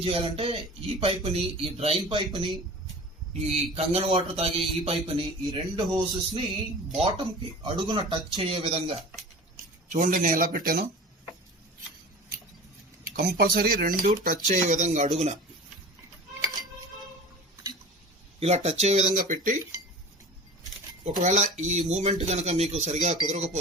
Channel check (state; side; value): normal; both; correlation 0.38